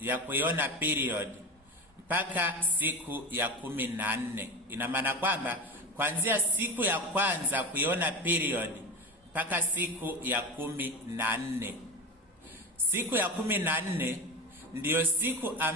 ya kuiona period mpaka siku ya 14. Ina maana kwamba kuanzia siku ya kwanza kuiona period mpaka siku ya 14. Siku ya 14 ndiyo siku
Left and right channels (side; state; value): both; normal; correlation 0.25